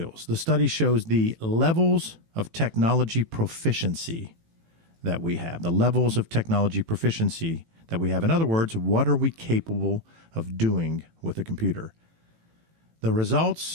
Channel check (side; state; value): left; late; 18 ms